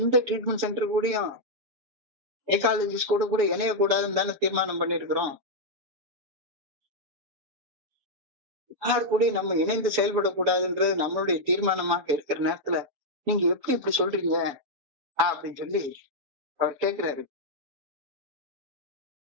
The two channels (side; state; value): left; late; 7.0 ms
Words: ட்ரீட்மெண்ட் சென்டர் கூடயும் சைக்காலஜிஸ்ட் கூட இணையக்கூடாதுன்னு தானே தீர்மானம் பண்ணிருக்கிறோம். யார் கூட நம்ம இணைந்து செயல்படக்கூடாதுன்றது நம்மளுடைய தீர்மானமாக இருக்கிற நேரத்துல நீங்க எப்படி இப்படி சொல்றீங்க அப்படின்னு சொல்லி அவர் கேட்கிறாரு.